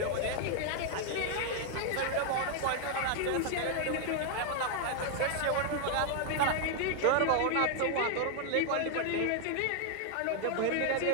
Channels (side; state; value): both; different; correlation 0.00